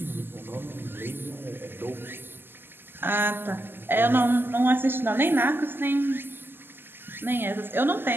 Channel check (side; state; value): left; late; 0.098 ms